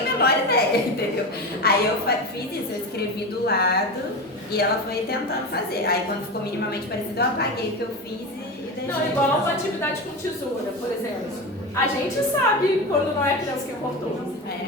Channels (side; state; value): both; normal; correlation 0.23